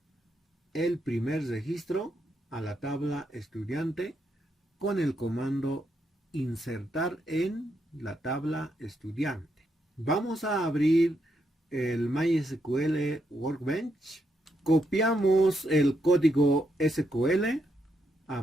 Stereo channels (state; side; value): normal; both; correlation 0.80